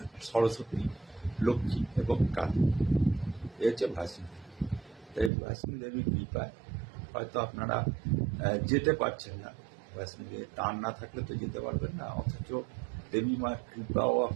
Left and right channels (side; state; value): left; drops out; at 5.3 s